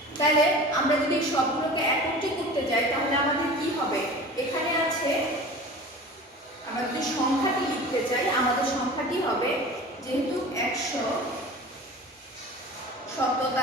তাহলে আমরা যদি সবগুলোকে একত্রে করতে যাই তাহলে আমাদের কি হবে? এখানে আছে, আমরা যদি সংখ্যাটি লিখতে চাই আমাদের সংখ্যাটি হবে, যেহেতু 100 শত,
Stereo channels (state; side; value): normal; both; correlation 0.38